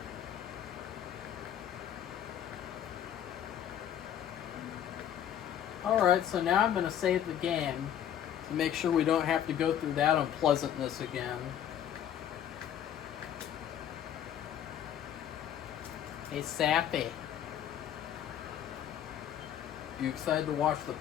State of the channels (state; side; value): quieter; right; 10.2 dB